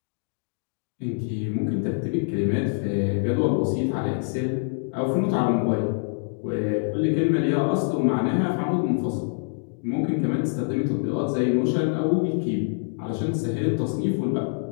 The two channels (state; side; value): silent; right; digital silence